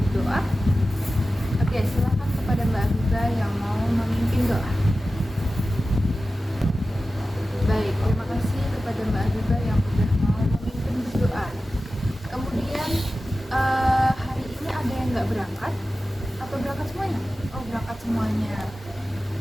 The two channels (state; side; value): normal; both; correlation 0.94